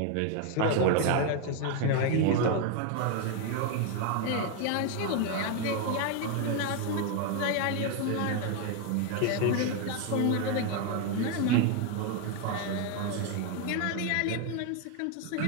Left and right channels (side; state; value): both; different; correlation 0.01